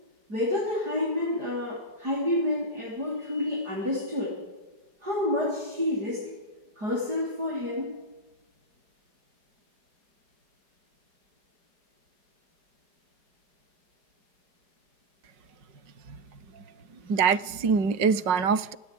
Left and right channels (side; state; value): left; late; 4.8 ms